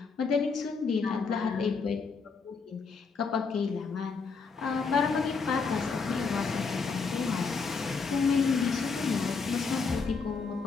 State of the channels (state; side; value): quieter; right; 4.9 dB